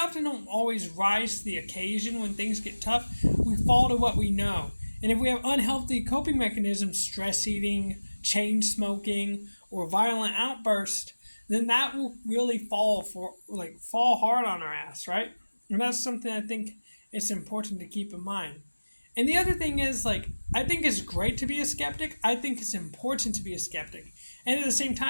don't always rise to the occasion when things get tough. We fall to what we know. And if we have unhealthy coping mechanisms, stress eating, chain smoking, or violent outburst, then that will really fall hard on our ass, right? And that's something I think it's important to keep in mind. And the other thing is, like, I think it's great to be a skeptic. I think it's important to be a skeptic. And at the same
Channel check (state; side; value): inverted; both; correlation -1.00